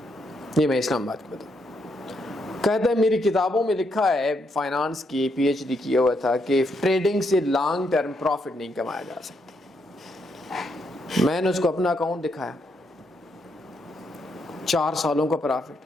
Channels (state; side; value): normal; both; correlation 0.77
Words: یہ میں اسلام آباد کی بتاؤں. کہتا ہے میری کتابوں میں لکھا ہے, فائنانس کی پی ایچ ڈی کیا ہوا تھا, کہ ٹریڈنگ سے لانگ ٹرم پروفٹ نہیں کمایا جا سکتا. میں نے اس کو اپنا اکاؤنٹ دکھایا, 4 سالوں کا